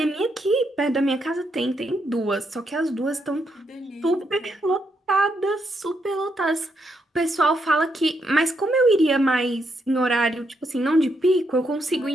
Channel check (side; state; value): both; normal; correlation 0.78